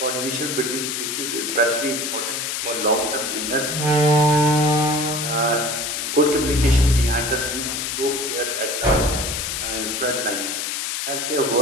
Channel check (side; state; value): left; noise; hiss, 2 dB below the sound